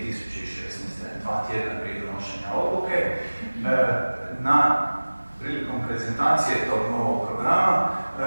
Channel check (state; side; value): inverted; both; correlation -1.00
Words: 2 tjedna prije donošenja odluke, prilikom prezentacije tog novog programa,